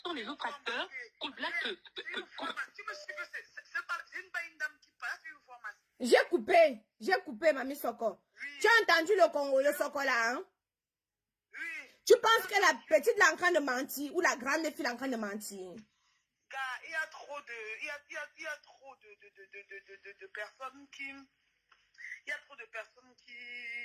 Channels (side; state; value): both; identical; correlation 1.00